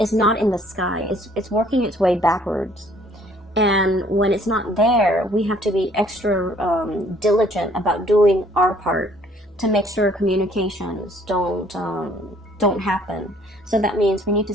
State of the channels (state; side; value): normal; both; correlation 0.60